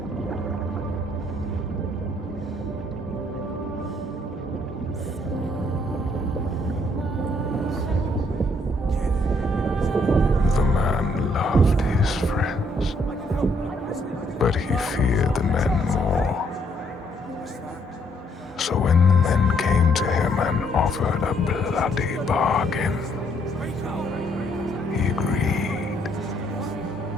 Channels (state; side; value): normal; both; correlation 0.69